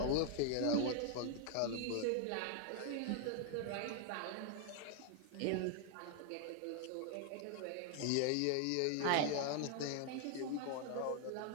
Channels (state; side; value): different; both; correlation 0.00